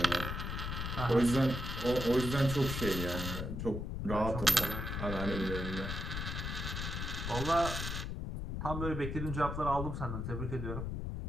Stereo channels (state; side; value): noise; left; rumble, 4 dB below the sound